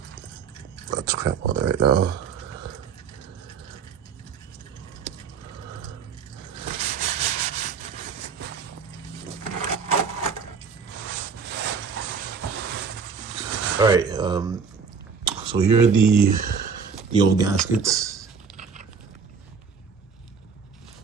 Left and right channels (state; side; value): quieter; left; 5.9 dB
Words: That's crap on there right now. All right, so here are the old gaskets